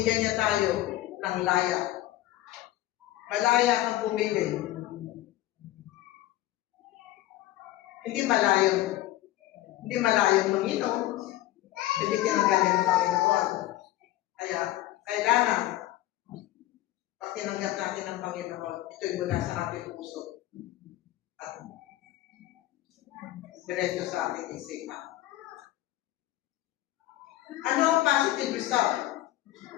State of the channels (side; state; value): right; quieter; 15.4 dB